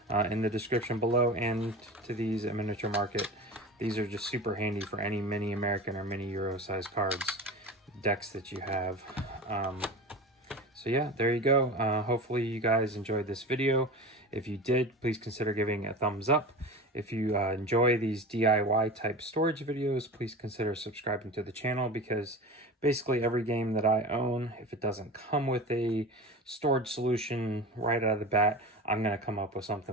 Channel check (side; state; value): both; normal; correlation 0.31